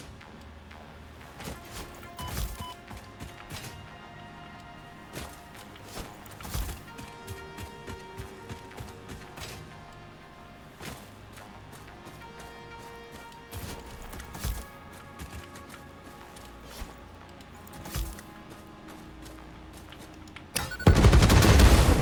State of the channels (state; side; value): identical; both; correlation 1.00